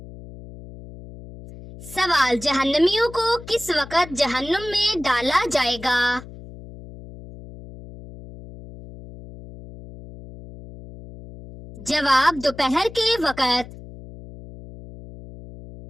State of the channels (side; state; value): left; noise; hum, 16 dB below the sound